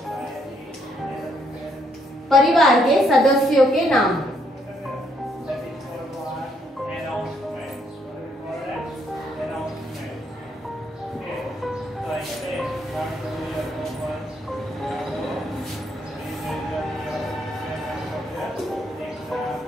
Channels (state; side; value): normal; both; correlation 0.72